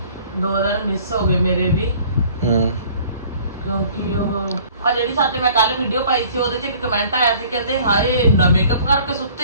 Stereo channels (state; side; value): inverted; both; correlation -0.53